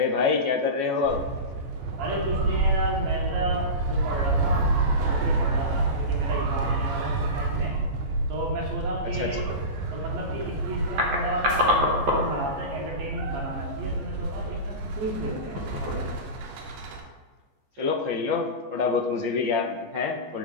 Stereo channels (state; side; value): late; left; 14 ms